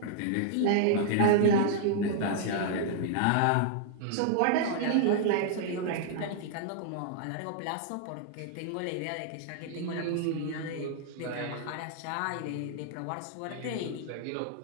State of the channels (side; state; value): both; different; correlation -0.01